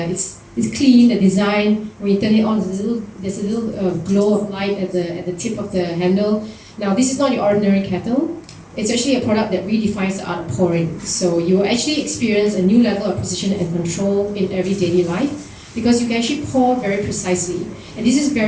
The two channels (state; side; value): identical; both; correlation 1.00